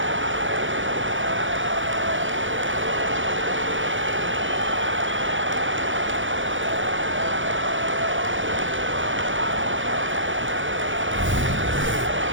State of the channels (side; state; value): left; late; 0.56 ms